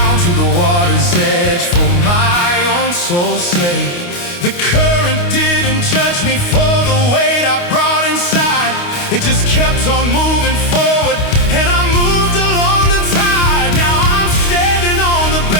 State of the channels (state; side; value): late; right; 29 ms